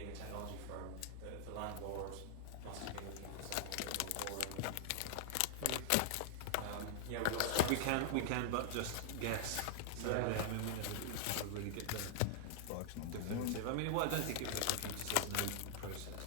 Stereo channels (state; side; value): different; both; correlation 0.00